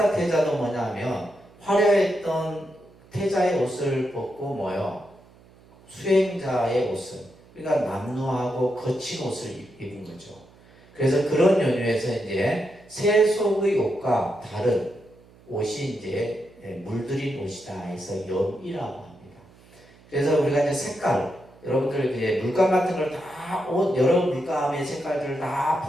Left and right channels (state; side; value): noise; right; hum, 26 dB below the sound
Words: 태자도 뭐냐면 화려했던 태자의 옷을 벗고 수행자의 옷을, 그러니까 남루하고 거친 옷을 입은 거죠. 그래서 그런 연유에서 이제 세속의 옷과 다른 옷이 이제 물들인 옷이다 해서 염이라고 합니다. 그래서 우리가 이제 색깔, 여러분들 이제 물감 같은 걸 다 여러 물감의 색깔들을 다